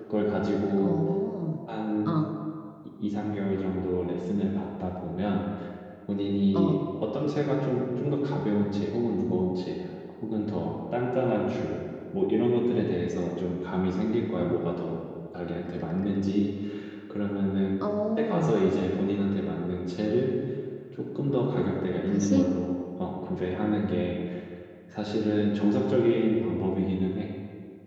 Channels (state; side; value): identical; both; correlation 1.00